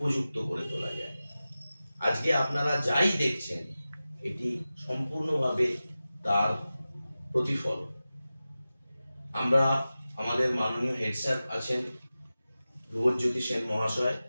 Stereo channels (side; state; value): both; inverted; correlation -0.95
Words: করে তোলা যায়। আজকে আপনারা যাই দেখছেন এটি সম্পূর্ণভাবে তার প্রতিফল। আমরা আমাদের মাননীয় হেড স্যার আছেন ধ্রুবজ্যোতি সেন মহাশয়,